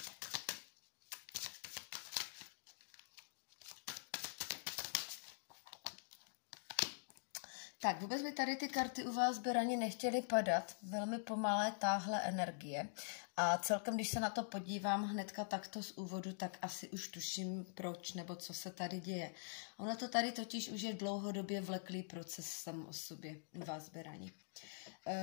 Tak, vůbec by tady ty karty u vás berani nechtěly padat. Velmi pomalé táhle energie. A celkem, když se na to podívám hnedka takto z úvodu, tak asi už tuším proč nebo co se tady děje. Ono to tady totiž už je dlouhodobě vleklý proces sám o sobě u vás berani.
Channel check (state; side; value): silent; right; digital silence